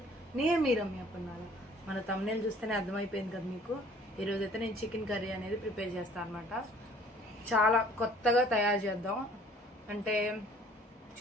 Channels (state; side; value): normal; both; correlation 0.55